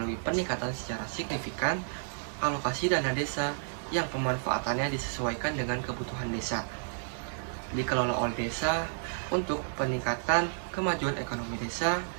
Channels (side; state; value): left; silent; digital silence